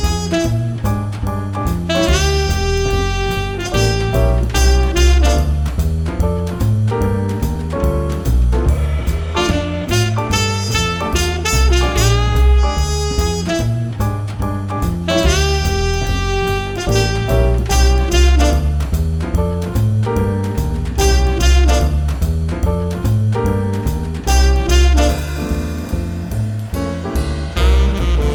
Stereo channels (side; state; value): both; identical; correlation 1.00